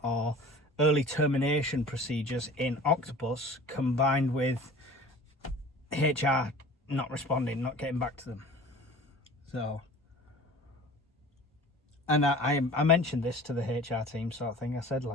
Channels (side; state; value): both; normal; correlation 0.42